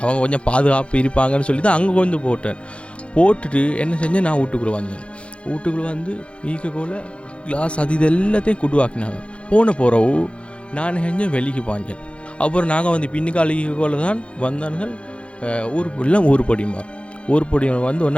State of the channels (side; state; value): right; late; 0.059 ms